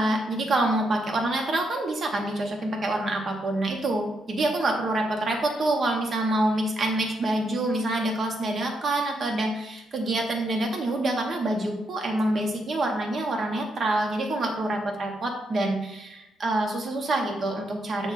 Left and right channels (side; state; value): both; normal; correlation 0.79